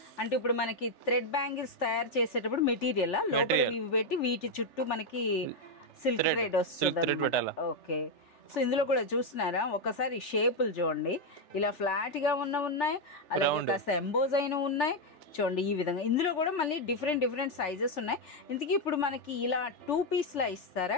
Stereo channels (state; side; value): late; right; 3.4 ms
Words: అంటే ఇప్పుడు మనకి థ్రెడ్ బ్యాంగిల్స్ తయారు చేసేటప్పుడు మెటీరియల్ లోపల ఇవి పెట్టి వీటి చుట్టూ మనకి సిల్క్ థ్రెడ్ వస్తుంది. ఓకే, సో ఇందులో కూడా చూస్తున్నారా ఒకసారి షేపులు చూడండి, ఇలా ఫ్లాట్ గా ఉన్నాయి, అలాగే కాస్త ఎంబోజ్ అయిన ఉన్నాయి చూడండి ఈ విధంగా. ఇందులో కూడా మళ్ళీ డిఫరెంట్ సైజెస్ ఉన్నాయి. ఇంతకీ ఇప్పుడు మనకి ఇలా 2 పీస్ లా